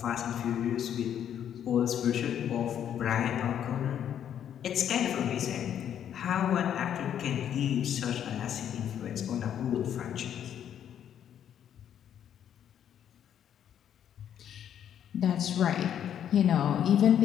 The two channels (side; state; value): right; quieter; 9.6 dB